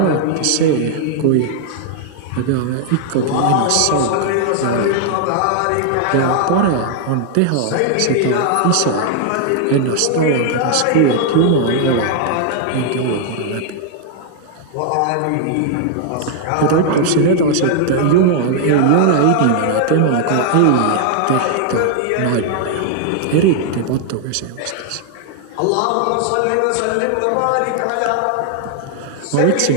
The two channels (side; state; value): both; different; correlation 0.00